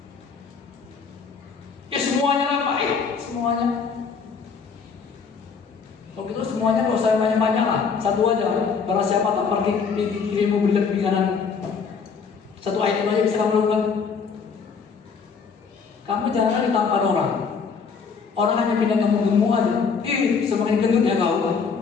Ya semuanya lah Pak, semuanya. Kalau gitu semuanya nggak usah banyak-banyak lah, satu aja. Barang siapa tak pergi kirimu berikan di kanan. Satu item aja bisa kamu lakukan. Kamu jangan ditampar orang. Orang hanya pindah kamu gemuk aja. Semakin gendut ya kau,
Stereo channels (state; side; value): quieter; right; 5.6 dB